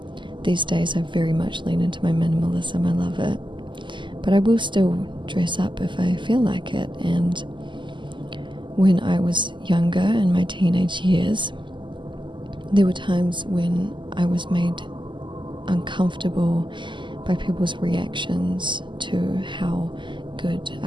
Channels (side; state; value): left; late; 0.24 ms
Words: These days I very much lean into my minimalism. I love it. But I will still dress up if I feel like it, and when I was younger, in my teenage years, there were times when I was made uncomfortable by people's reactions to how good